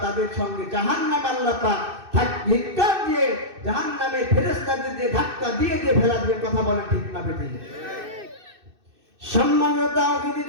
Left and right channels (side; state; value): left; late; 2.6 ms